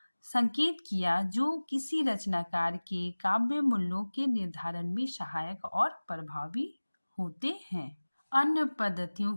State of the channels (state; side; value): inverted; both; correlation -1.00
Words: संकेत किया जो किसी रचनाकार के काव्य मूल्यों के निर्धारण में सहायक और प्रभावी होते हैं। अन्य पद्धतियों